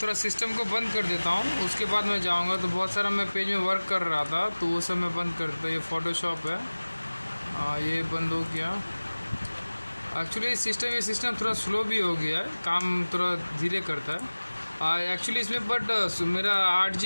थोड़ा सिस्टम को बंद कर देता हूँ, उसके बाद मैं जाऊँगा। तो बहुत सारा मैं पेज में वर्क कर रहा था, तो वो सब मैं बंद कर देता। ये फ़ोटोशॉप है, ये बंद हो गया। एक्चुअली ये सिस्टम थोड़ा स्लो भी हो गया है, काम थोड़ा धीरे करता है एक्चुअली इसमें। बट मेरा 8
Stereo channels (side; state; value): both; inverted; correlation -1.00